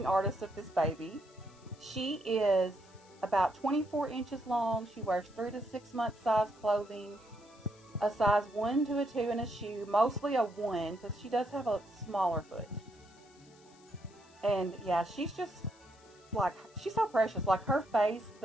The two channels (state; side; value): noise; left; hiss, 27 dB below the sound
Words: artist of this baby. She is about 24 inches long. She wears 3 to 6 month size clothing, a size 1 to a 2 in a shoe, mostly a 1 because she does have a smaller foot. And yeah, she's just like, she's so precious. Like her face,